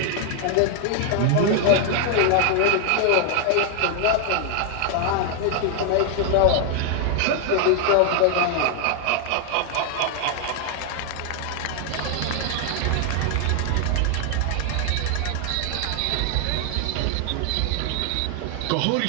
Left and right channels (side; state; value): both; different; correlation 0.00